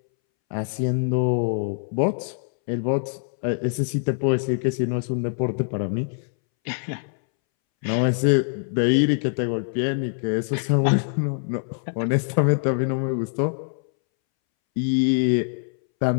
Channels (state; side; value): silent; right; 63 dB below the other